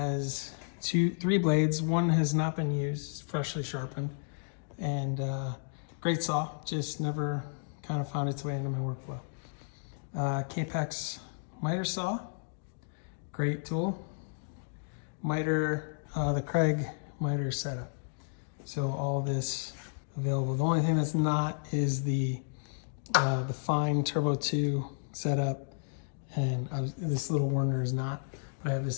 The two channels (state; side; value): silent; right; digital silence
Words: three blades. One has not been used, freshly sharpened, and great saw, just never kind of found its way into my workflow. Kapex miter saw, great tool. Miter, the Craig miter setup. So all this available. The only thing that's not is the fine Turbo 2 setup, and this little Werner is not, but I have this